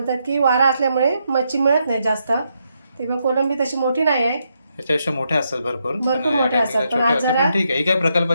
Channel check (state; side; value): inverted; both; correlation -0.80